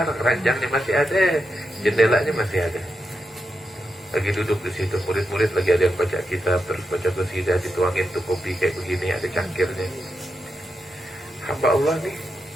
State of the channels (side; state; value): both; normal; correlation 0.86